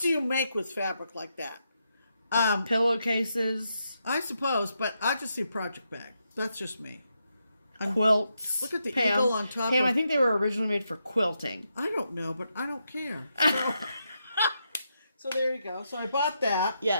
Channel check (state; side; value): inverted; both; correlation -0.82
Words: you make with fabric like that? Pillowcases. I suppose, but I just see project bag. That's just me. Quilts. Look at the Pam, eagle on top. Pam, I think they were originally made for quilting. I don't know, but I don't care. So, so there you go. So I bought that.